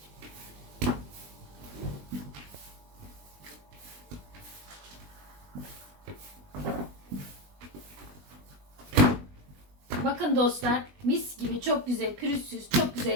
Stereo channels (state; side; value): late; left; 20 ms